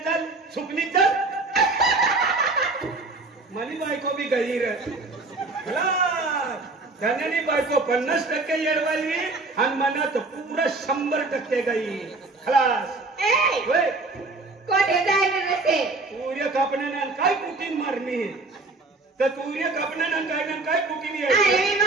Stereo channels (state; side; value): quieter; left; 3.5 dB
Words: चल सुकनी चल मनी बायको भी गई रे धन्यानी बायको 50% येडवाली आणि मनात पूरा 100% गई खलास कोठे जायला नसे सूर्य कापण्यानं काय कुटीन मारणी तर सूर्य कापण्यानं काय कुटीन अरे मी